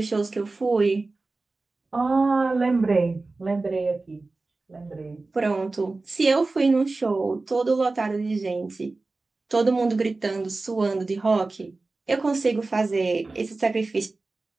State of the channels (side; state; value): left; quieter; 3.5 dB